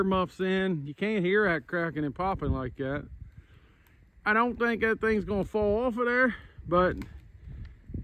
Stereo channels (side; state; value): both; identical; correlation 1.00